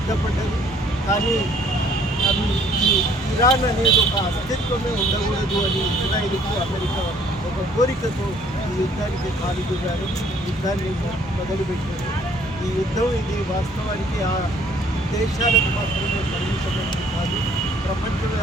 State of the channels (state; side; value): normal; both; correlation 0.60